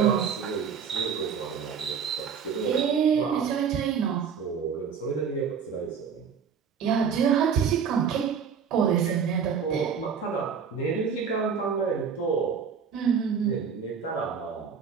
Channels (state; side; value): quieter; left; 6.8 dB